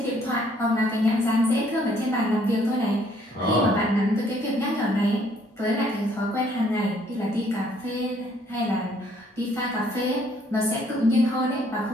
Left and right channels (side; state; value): both; normal; correlation 0.64